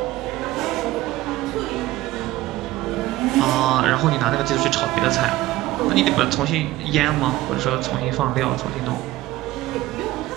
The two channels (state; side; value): quieter; left; 16.8 dB